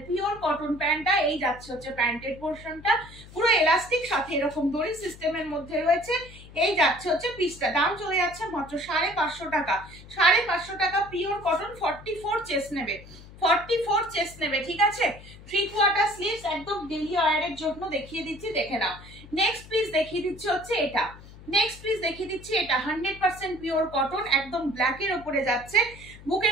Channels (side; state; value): left; noise; hum, 19 dB below the sound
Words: পিওর কটন প্যান্টটা। এই যাচ্ছে হচ্ছে প্যান্টের পোর্শনটা, পুরো এলাস্টিক, সাথে এরকম দড়ি সিস্টেমের মধ্যে রয়েছে। এই যাচ্ছে হচ্ছে পিসটা, দাম চলে যাচ্ছে মাত্র 550 টাকা। 550 টাকা পিওর কটন, 44 চেস্ট নেবে, 44 চেস্ট নেবে, ঠিক আছে? 3/4 স্লিভস, একদম ডেলি ওয়্যারের জন্য দেখিয়ে দিচ্ছি, দেখে নাও। নেক্সট পিস দেখিয়ে দিচ্ছি হচ্ছে এটা, 100% পিওর কটন, একদম ব্ল্যাকের ওপরে যাচ্ছে,